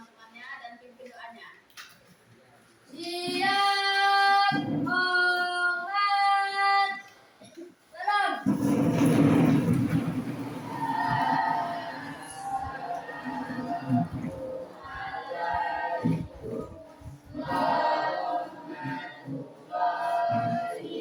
dan pimpin doanya. Siap, hormat, salam.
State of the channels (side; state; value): both; identical; correlation 1.00